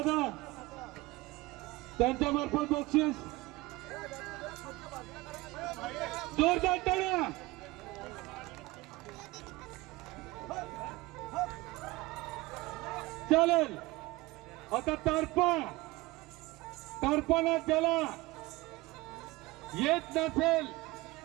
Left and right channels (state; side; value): quieter; left; 20.8 dB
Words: त्यांच्या मार्फत बक्षीस. जोरदार टाळ्या. चालेल. आता तारपा ज्याला येत नसेल